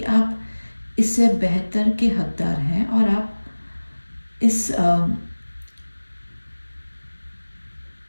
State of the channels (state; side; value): inverted; both; correlation -1.00